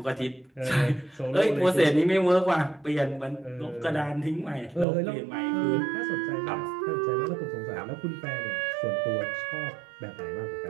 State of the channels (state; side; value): drops out; left; at 4.9 s